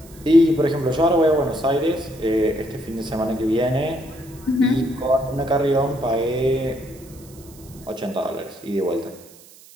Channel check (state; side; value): noise; right; hiss, 23 dB below the sound